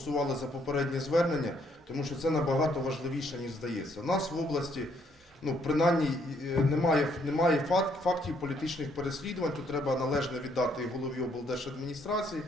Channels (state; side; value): normal; both; correlation 0.69